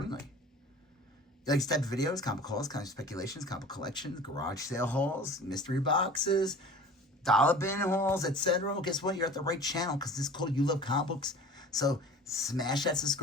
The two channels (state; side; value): normal; both; correlation 0.42